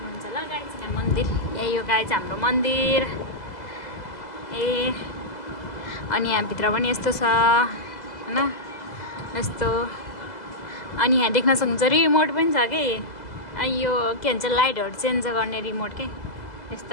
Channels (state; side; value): late; right; 2.0 ms